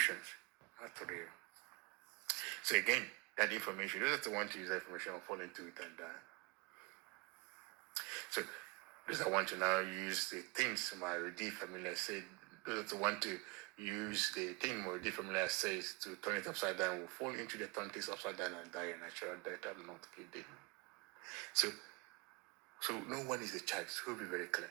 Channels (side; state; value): left; quieter; 26.9 dB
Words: not real. So again, that information, those that want to use that information will fall into it and die. So those that want to now use the things my already familiar said, those that want to use the thing my already familiar says to turn it upside down will fall into the turn things upside down and die a natural death. I'm not kidding. So no one is the child. So we'll be very clear.